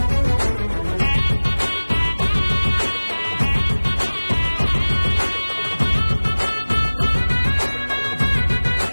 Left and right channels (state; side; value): inverted; both; correlation -1.00